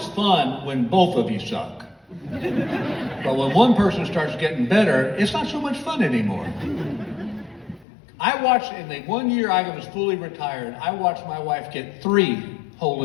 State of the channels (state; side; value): drops out; right; at 7.9 s